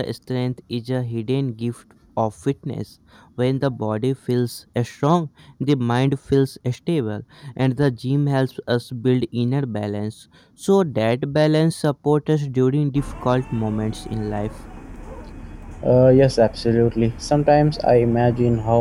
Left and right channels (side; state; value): both; identical; correlation 1.00